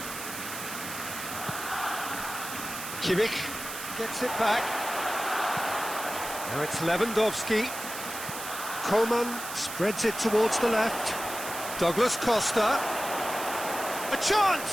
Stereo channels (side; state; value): right; noise; hiss, 8 dB below the sound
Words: Kimmich gets it back. Now it's Lewandowski. Coman spreads it towards the left. Douglas Costa. A